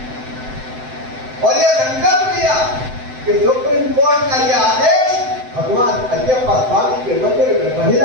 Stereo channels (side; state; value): left; late; 7.8 ms